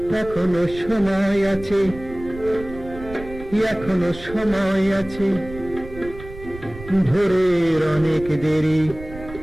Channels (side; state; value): right; noise; rumble, 15 dB below the sound